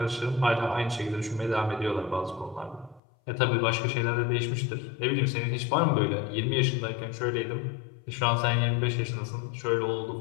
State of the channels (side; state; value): right; drops out; at 3.0 s